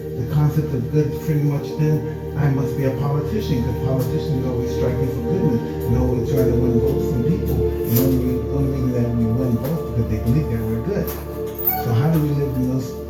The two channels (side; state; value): both; identical; correlation 1.00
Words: the concept of good is pretty much then, I must be a politician, because politicians always striking for goodness and always trying to win votes from people. And the only reason that we win votes because they believe that we're good. So how do we live in those